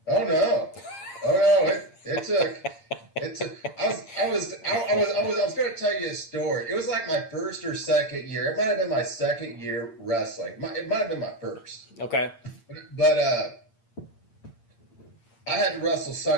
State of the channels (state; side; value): late; right; 8.7 ms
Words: Oh no! It took. I was going to tell you a story. It was like my first or second year. It might have been my second year wrestling. It might have been my first. Okay. But I had to wrestle